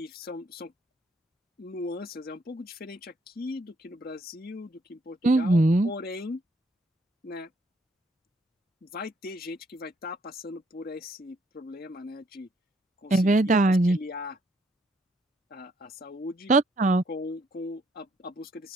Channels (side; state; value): both; normal; correlation 0.69